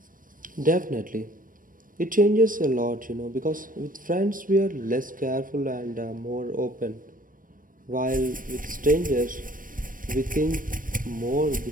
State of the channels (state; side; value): late; left; 0.40 ms